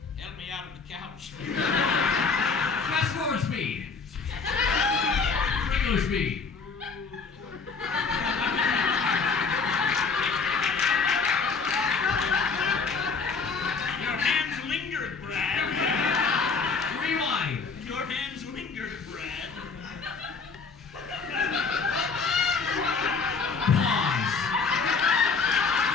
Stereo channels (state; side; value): quieter; right; 4.9 dB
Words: out of the couch. Fast forward speed. Regular speed. Your hands lingered, Brad. Rewind. Your hands lingered, Brad. Pause.